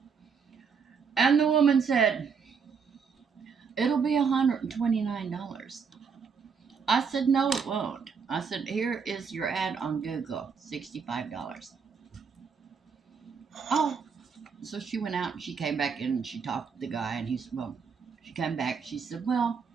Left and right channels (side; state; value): left; quieter; 6.0 dB